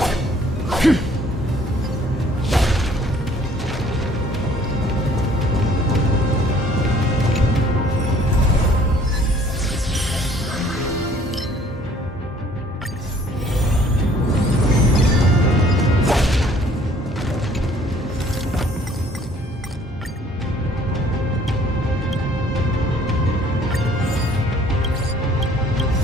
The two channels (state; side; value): normal; both; correlation 0.57